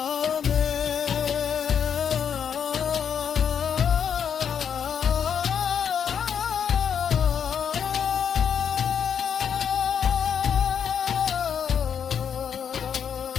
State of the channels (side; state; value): right; quieter; 7.8 dB